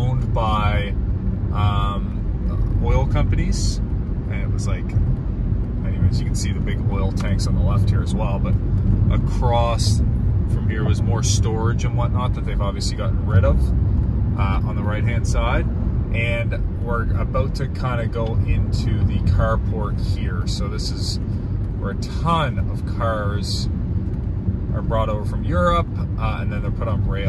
by oil companies, and it was like, anyways, you can see the big oil tanks on the left here as well. But across from here was more storage and whatnot that they've obviously gotten rid of on the right hand side. And we're about to kind of go into the carport here. So this is where a ton of cars are brought over from Europe, and then they're put on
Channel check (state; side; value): identical; both; correlation 1.00